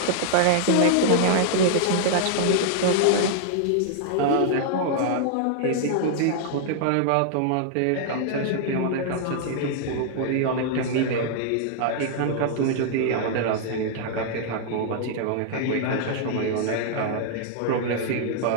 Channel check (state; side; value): different; both; correlation -0.01